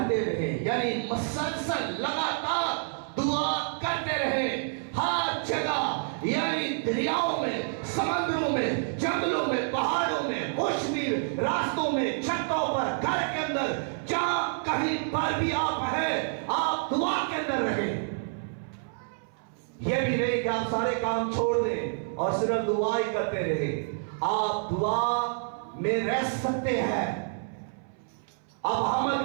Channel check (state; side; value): silent; left; 59 dB below the other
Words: रहे, यानी मसलसल लगातार दुआ करते रहे हर जगह, यानी दरियाओं में, समुद्रों में, जंगलों में, पहाड़ों में, मौसमी रास्तों में, छतों पर, घर के अंदर, जहां कहीं पर भी आप हैं, आप दुआ के अंदर रहे। यह भी नहीं कि आप सारे काम छोड़ दें और सिर्फ दुआ ही करते रहे। आप दुआ में रह सकते हैं, आप